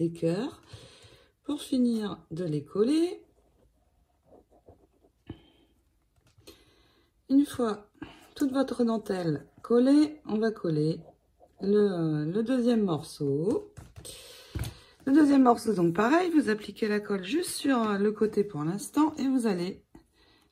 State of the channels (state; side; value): identical; both; correlation 1.00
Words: cœurs pour finir de les coller. Une fois toute votre dentelle collée, on va coller le deuxième morceau. Le deuxième morceau, donc pareil, vous appliquez la colle juste sur le côté pour l'instant et vous allez